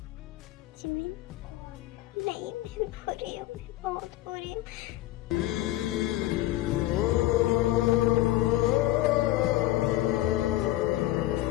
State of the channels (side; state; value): right; quieter; 15.8 dB